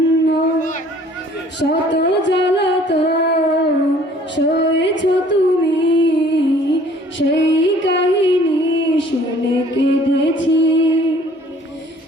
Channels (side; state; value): both; normal; correlation 0.55